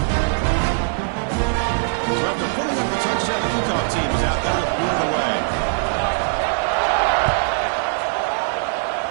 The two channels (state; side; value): silent; left; digital silence